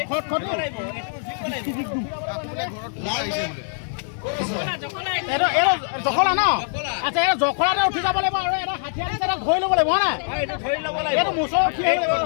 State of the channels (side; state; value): right; silent; digital silence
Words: খটখটি এইটো জখলা ন আচ্ছা এই জখলাতে উঠি যাব লাগিব আৰু এটা হাতীয়া দিছে এটা ধৰি ল'ব লাগিব হয় নাই এইটো মুচৰ উঠি আহিব